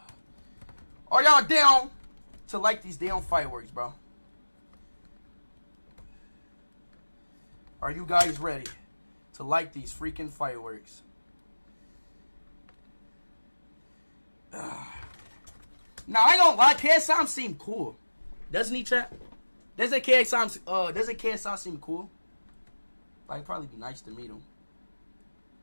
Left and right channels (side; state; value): both; inverted; correlation -1.00